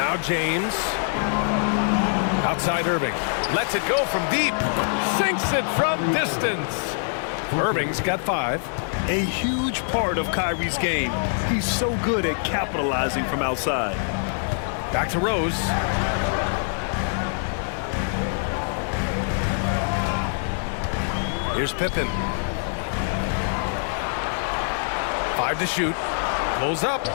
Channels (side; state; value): right; silent; digital silence